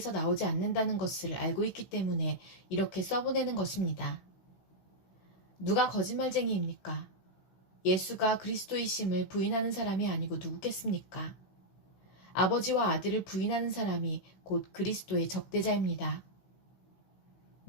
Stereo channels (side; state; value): right; late; 16 ms